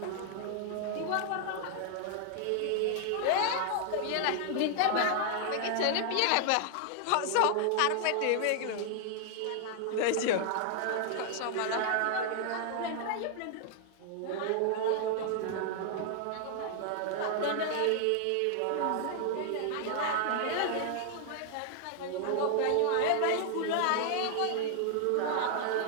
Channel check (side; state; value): both; different; correlation 0.00